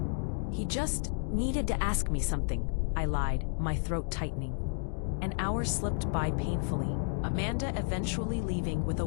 "He just needed to ask me something," I lied, my throat tightening. An hour slipped by painfully, Amanda eventually leaving with a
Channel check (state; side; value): silent; right; digital silence